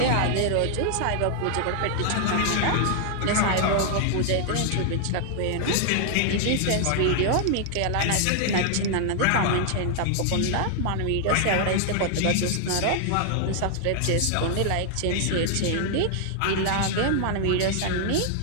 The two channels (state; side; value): different; both; correlation 0.00